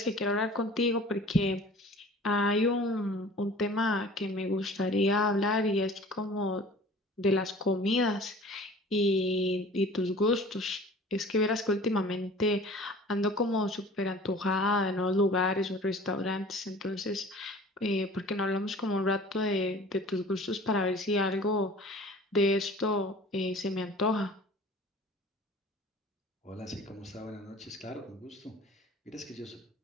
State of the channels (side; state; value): both; normal; correlation 0.45